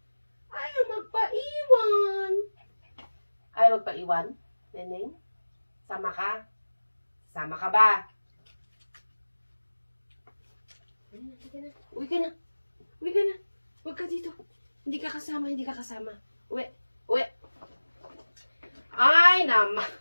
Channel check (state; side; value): inverted; both; correlation -1.00